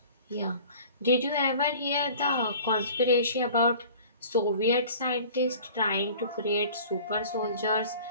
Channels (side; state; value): both; inverted; correlation -0.45